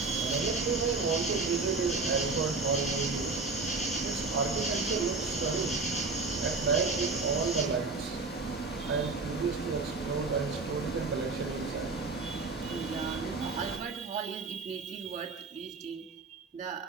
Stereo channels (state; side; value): quieter; left; 4.0 dB